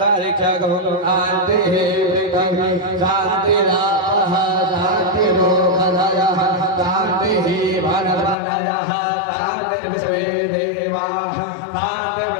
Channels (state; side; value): drops out; right; at 8.3 s